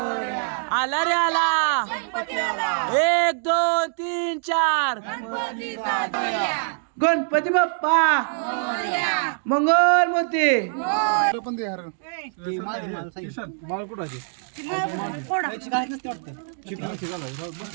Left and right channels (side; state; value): left; silent; digital silence